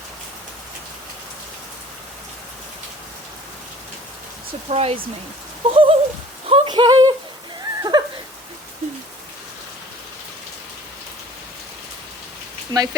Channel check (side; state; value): both; normal; correlation 0.50